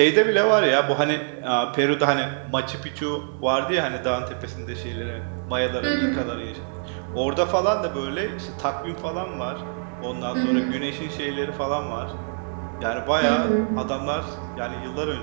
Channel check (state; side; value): silent; left; 62 dB below the other